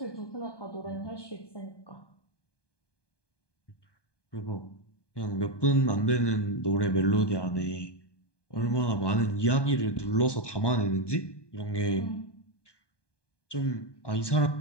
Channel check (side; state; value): right; late; 1.2 ms